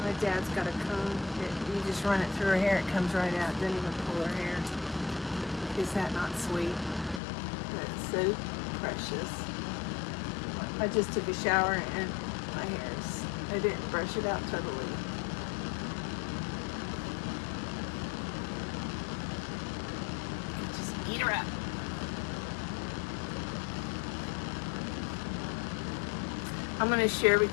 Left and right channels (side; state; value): right; drops out; at 7.2 s